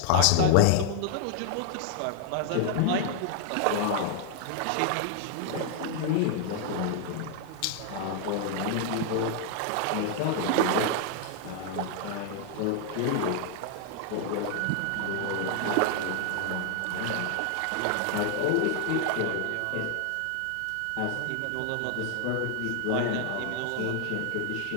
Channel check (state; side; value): different; both; correlation 0.00